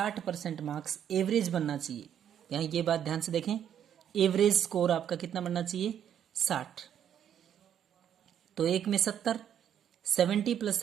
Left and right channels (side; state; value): left; quieter; 9.5 dB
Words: मार्क्स एवरेज बनना चाहिए। यहाँ ये बात ध्यान से देखें, एवरेज स्कोर आपका कितना बनना चाहिए 60। तो एक में 70, 70 +